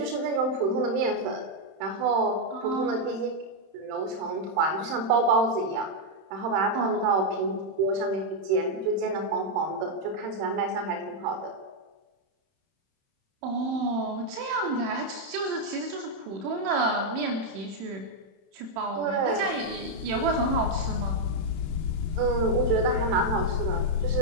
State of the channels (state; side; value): late; left; 31 ms